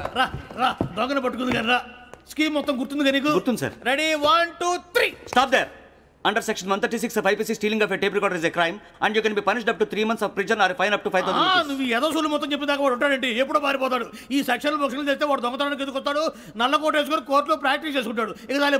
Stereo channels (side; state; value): both; identical; correlation 1.00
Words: రా దొంగను పట్టుకుంది కానీ రా. స్కీమ్ మొత్తం గుర్తుంది కానీ గుర్తుంది sir. Ready 1 2 3. Stop there. Under section 136 of IPC, stealing of a tape recorder is a crime and you can be punished up to 3 months of prison or a fine up to 5,000 rupees. నువ్వు ఏదో సొల్లు మొత్తం చెప్పేదాకా వాడు ఉంటాడండి, ఎప్పుడో పారిపోతాడు. ఈ సెక్షన్ బొక్షన్లు చేస్తే వాడు దొంగతనానికి ఎందుకు వస్తాడు? నల్ల కోట వేసుకొని కోర్టులో ప్రాక్టీస్ చేసుకుంటాడు. ఇక చాలే